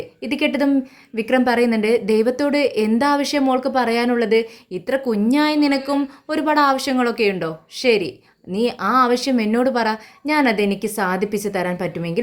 ഇത് കേട്ടതും വിക്രം പറയുന്നുണ്ട്, ദൈവത്തോട് എന്താവശ്യം മോൾക്ക് പറയാനുള്ളത്? ഇത്ര കുഞ്ഞായി നിനക്കും ഒരുപാട് ആവശ്യങ്ങളൊക്കെ ഉണ്ടോ? ശരി, നീ ആ ആവശ്യം എന്നോട് പറ, ഞാനതെനിക്ക് സാധിപ്പിച്ച് തരാൻ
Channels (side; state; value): both; identical; correlation 1.00